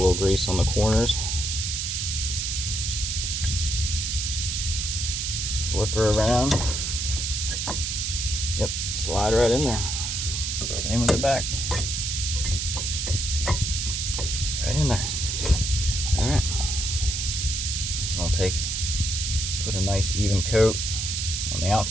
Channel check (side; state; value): right; noise; hiss, 1 dB below the sound